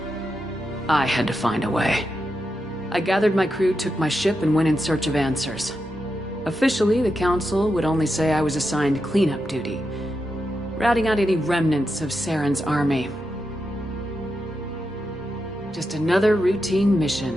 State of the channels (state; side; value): normal; both; correlation 0.87